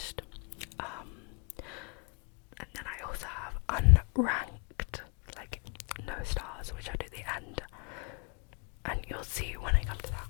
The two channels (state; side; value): quieter; right; 35.9 dB